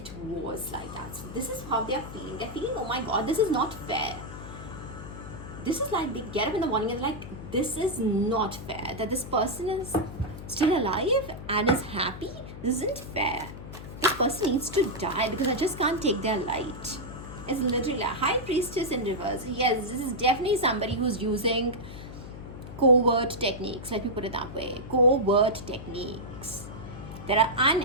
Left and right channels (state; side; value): noise; left; hum, 12 dB below the sound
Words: was like that. So this is how they're feeling. They're feeling, oh my god, this is not fair. This is like they get up in the morning and like, this is not fair. That this person is still alive and is happy. This isn't fair. This person needs to die because I just can't take their light. It's literally a high priestess in reverse. Yes, this is definitely somebody who's using covert techniques. Let me put it that way. Covert techniques that are